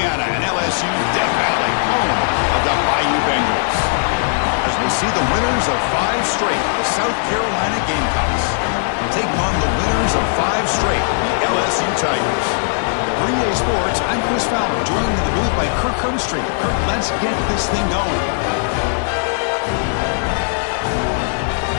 and LSU Death Valley, home of the Bayou Bengals. As we'll see the winners of 5 straight, the South Carolina Gamecocks, taking on the winners of 5 straight, the LSU Tigers. For EA Sports, I'm Chris Fowler, joined in the booth by Kirk Herbstreit. Kirk, let's get this thing going.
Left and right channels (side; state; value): right; silent; digital silence